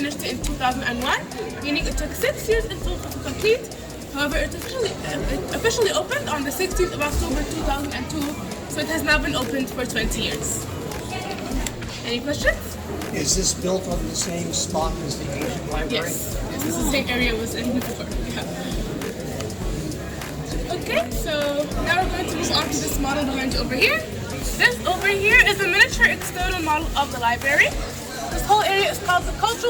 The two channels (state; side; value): identical; both; correlation 1.00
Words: it in 2001, meaning it took 6 years in total to complete. However, it officially opened on the 16th of October 2002, so it has now been opened for 20 years. Any questions? Is this built on the same spot as the ancient library? Yes, this is the same area it was in before. Yeah. Okay, so now we're going to move on to this model behind you over here. This over here is a miniature external model of the library. This whole area is called the